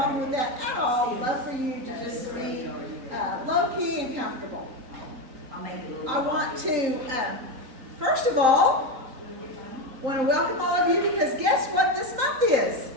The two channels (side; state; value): left; late; 3.9 ms